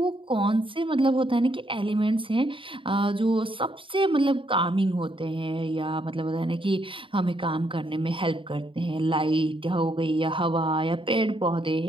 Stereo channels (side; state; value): left; late; 0.25 ms